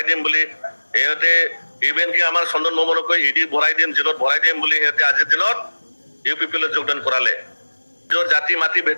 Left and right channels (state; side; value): inverted; both; correlation -1.00